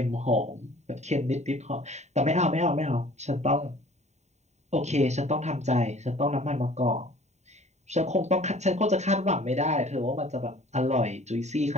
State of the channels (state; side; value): late; left; 0.33 ms